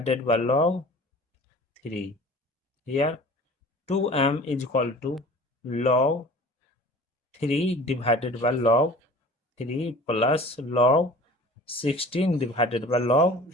by log 3. Here 2m is equal to log 3 divided by log 3 plus log 16 divided by log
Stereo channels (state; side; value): normal; both; correlation 0.43